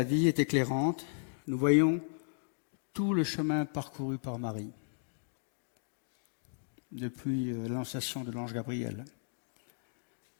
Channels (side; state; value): right; silent; digital silence